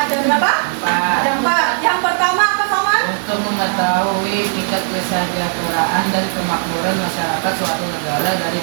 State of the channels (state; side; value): silent; left; 68 dB below the other